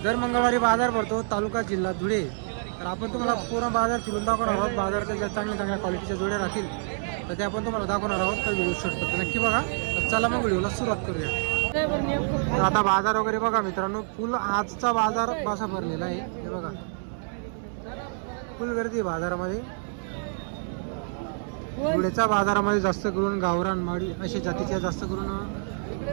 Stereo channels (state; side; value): silent; left; 60 dB below the other